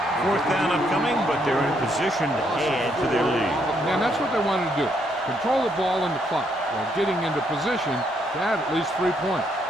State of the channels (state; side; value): normal; both; correlation 0.74